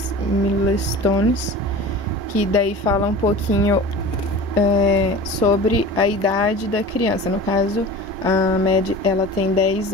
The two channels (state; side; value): normal; both; correlation 0.36